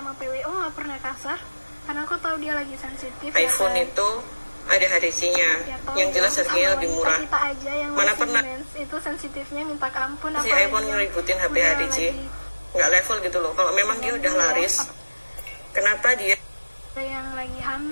PWO nggak pernah kasar karena aku tahu dia lagi sensitif. iPhone ya, itu ada HTC-nya ya, yang jelas harganya lebih murah. Kita aja yang mana pernah itu sensitifnya minta ampun. si iPhone ngeributin HP HTC, nggak level gitu loh. Kalau memang dia udah laris, kenapa dia yang lagi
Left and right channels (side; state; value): both; inverted; correlation -1.00